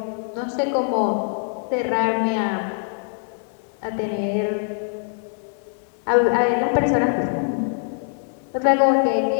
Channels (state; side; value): silent; right; 56 dB below the other